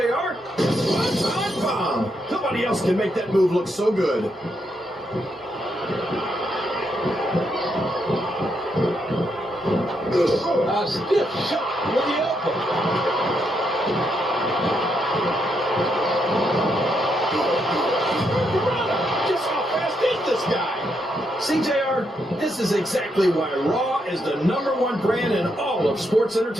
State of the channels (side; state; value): both; normal; correlation 0.79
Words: One-time bomb. Nobody else can make that move look so good. A stiff shot with the elbow. Just how fast is this guy? See, JR, this is exactly why Raw is the #1 brand in all of sports